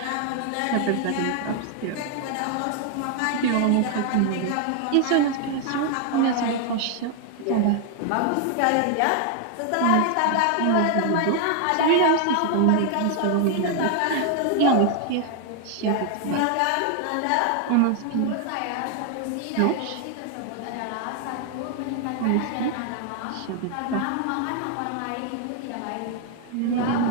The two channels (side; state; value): both; different; correlation 0.00